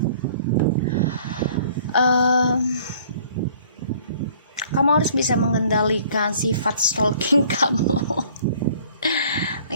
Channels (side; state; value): both; inverted; correlation -0.54